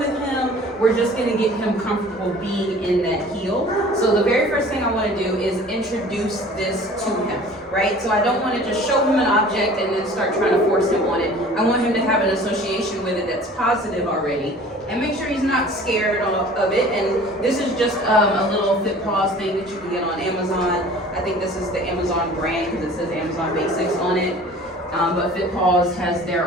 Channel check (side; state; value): both; normal; correlation 0.46